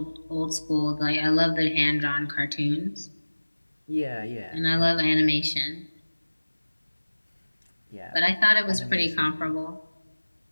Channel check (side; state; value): both; inverted; correlation -1.00